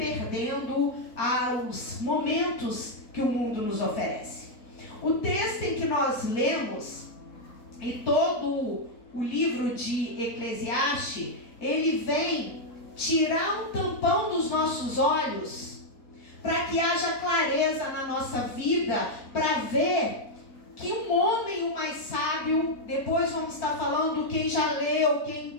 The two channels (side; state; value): right; late; 4.5 ms